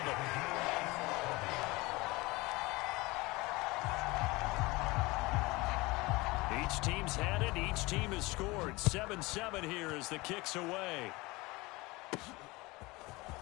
Each team's had it. Each team has scored. 7-7 here as the kick's away.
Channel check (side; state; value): right; quieter; 22.7 dB